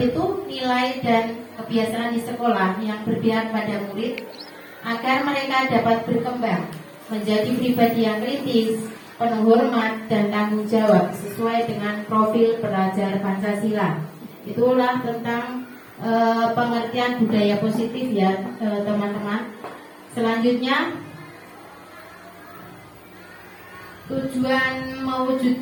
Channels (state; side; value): identical; both; correlation 1.00